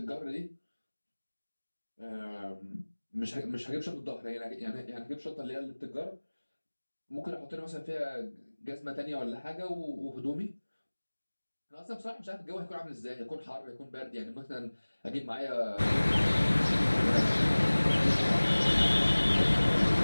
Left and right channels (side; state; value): both; inverted; correlation -1.00